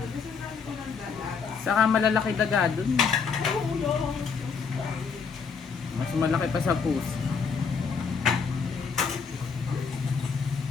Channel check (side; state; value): right; quieter; 5.7 dB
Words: Kasi sabi ko ng dagat. Saka malalaki daga doon. Ulo. Mas malaki pa sa puso.